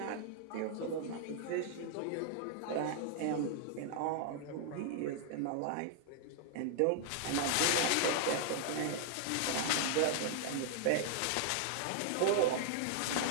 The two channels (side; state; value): both; different; correlation -0.01